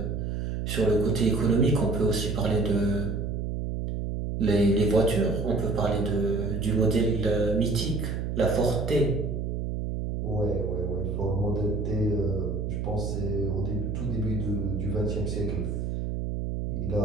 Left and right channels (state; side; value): noise; right; hum, 2 dB below the sound